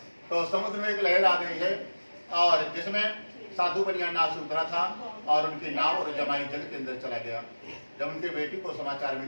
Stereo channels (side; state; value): both; inverted; correlation -1.00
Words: तो समुद्र में एक लहर आ गई है और जिसमें साधु बनिया नाव से उतरा था और उनकी नाव और जमाई जल के अंदर चला गया। जब उनके बेटी को समाचार